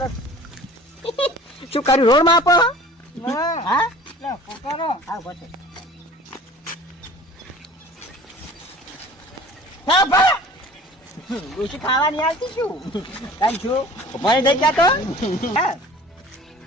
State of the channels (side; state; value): both; normal; correlation 0.45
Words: શું કર્યું રોડ માં આપો હા પકડો હા બસ હા ભા ડોશી ખાવાની આવતી શું કાઈ છું ઉભારી થઈ ગયા તો હા